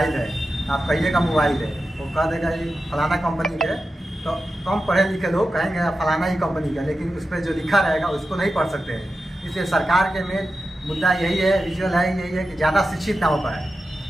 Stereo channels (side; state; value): both; normal; correlation 0.92